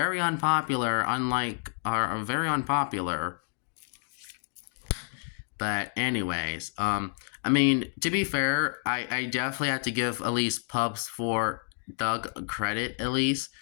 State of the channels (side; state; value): right; silent; digital silence